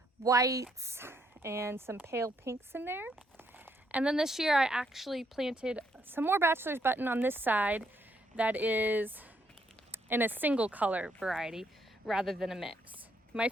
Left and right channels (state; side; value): normal; both; correlation 0.73